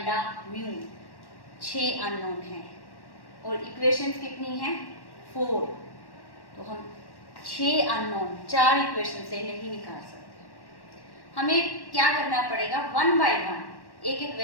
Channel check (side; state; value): right; late; 1.1 ms